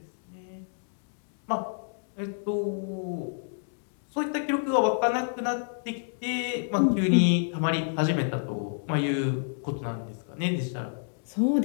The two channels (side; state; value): right; silent; digital silence